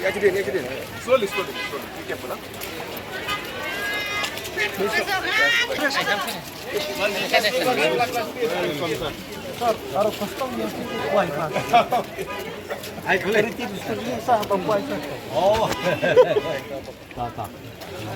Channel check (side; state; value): both; identical; correlation 1.00